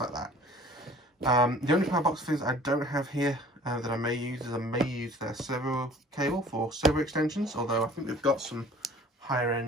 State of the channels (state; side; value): normal; both; correlation 0.49